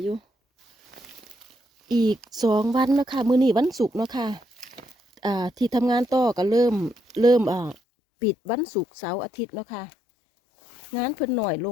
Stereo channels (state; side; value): drops out; right; at 7.8 s